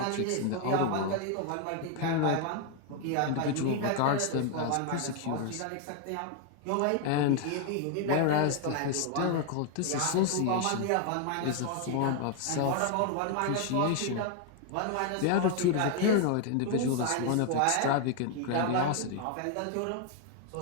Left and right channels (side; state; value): both; different; correlation 0.00